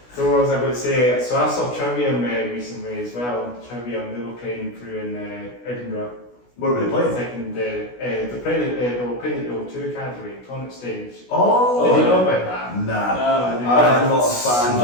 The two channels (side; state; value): right; late; 16 ms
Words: So what was I about to say? So I saw Trivium recently as well. Trivium, they were playing through in Edinburgh. What were they playing? Second, they were playing at the O2 Academy, Tonic Stage. Oh! Did you know about that? Nah. I'm not a fan.